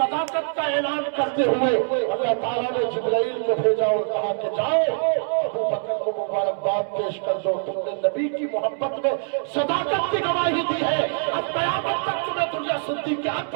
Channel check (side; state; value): left; silent; 63 dB below the other